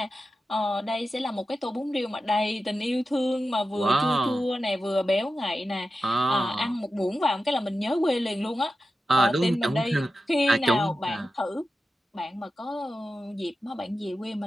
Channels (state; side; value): normal; both; correlation 0.92